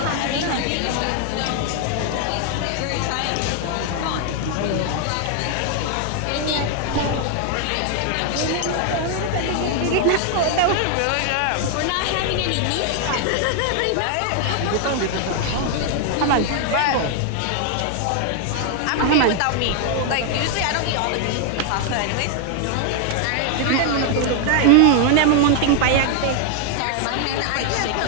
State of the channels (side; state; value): both; different; correlation 0.00